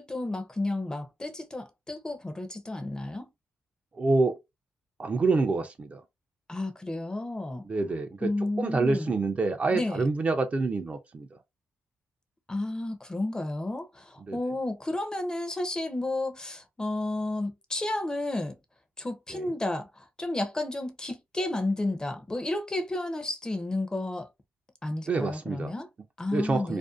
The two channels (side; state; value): both; normal; correlation 0.88